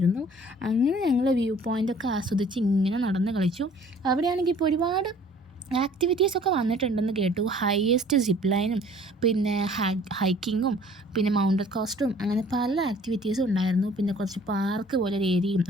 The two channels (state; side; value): normal; both; correlation 0.53